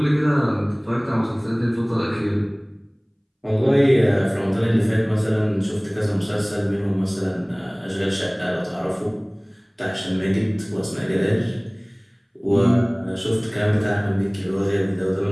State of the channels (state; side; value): identical; both; correlation 1.00